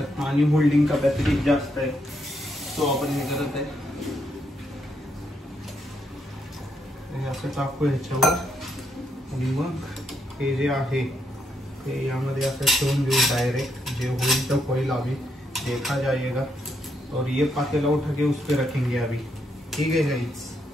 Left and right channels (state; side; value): normal; both; correlation 0.77